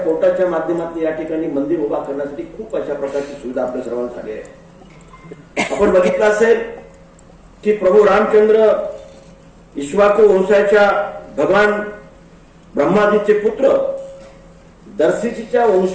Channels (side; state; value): both; identical; correlation 1.00